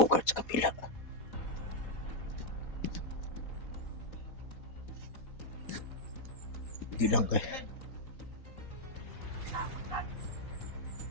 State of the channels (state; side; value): late; right; 4.1 ms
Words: sa kapila. Di lang kay.